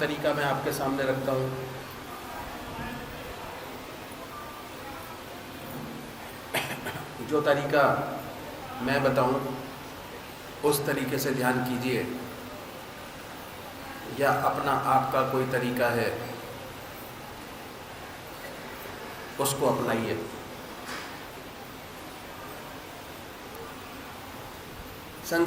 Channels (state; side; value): identical; both; correlation 1.00